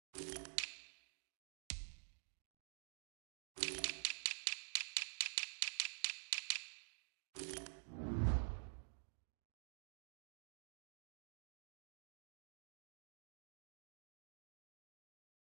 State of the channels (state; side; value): silent; left; digital silence